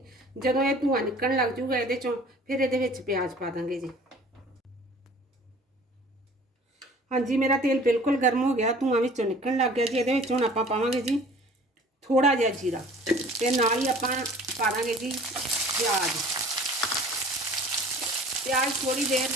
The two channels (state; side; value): normal; both; correlation 0.48